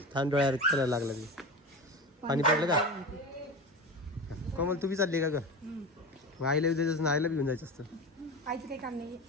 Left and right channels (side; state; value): both; normal; correlation 0.27